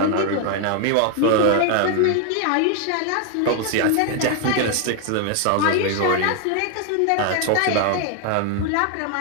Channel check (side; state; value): both; different; correlation 0.01